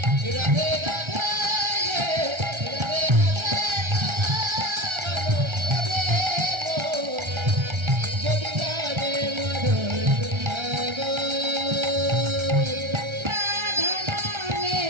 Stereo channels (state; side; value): late; left; 1.3 ms